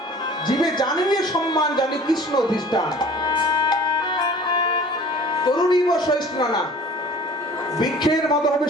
জীবে জানিবে সম্মান, জানি কৃষ্ণ অধিষ্ঠান। তরুণীব সহিষ্ণুনা, বৃক্ষের মতো হবে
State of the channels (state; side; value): normal; both; correlation 0.46